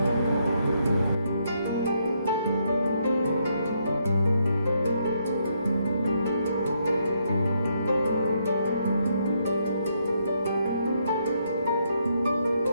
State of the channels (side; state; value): both; inverted; correlation -0.75